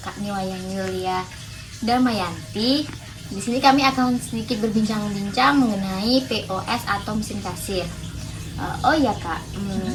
Niwayang Yulia Damayanti. Di sini kami akan sedikit berbincang-bincang mengenai POS atau mesin kasir. Oh iya kak,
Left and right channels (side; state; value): both; identical; correlation 1.00